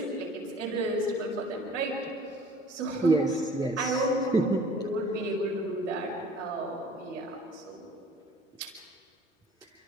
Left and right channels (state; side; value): normal; both; correlation 0.50